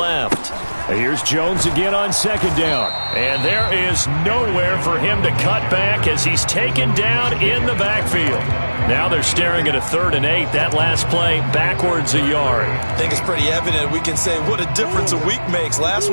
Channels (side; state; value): both; inverted; correlation -1.00